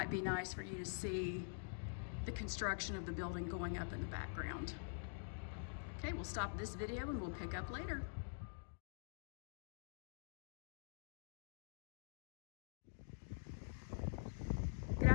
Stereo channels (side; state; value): right; silent; digital silence